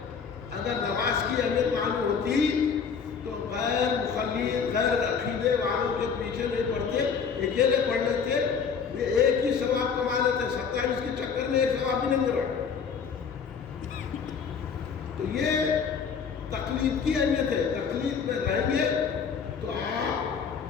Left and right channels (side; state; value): right; quieter; 6.3 dB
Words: اگر نماز کی اہمیت معلوم ہوتی تو غیر مخلص غیر عقیدے والوں کے پیچھے نہیں پڑتے، اکیلے پڑھ لیتے، یہ ایک ہی ثواب کما لیتے، 27 کے چکر میں ایک ثواب بھی نہیں مل رہا۔ تو یہ تقلید کی اہمیت ہے، تقلید میں رہیں گے تو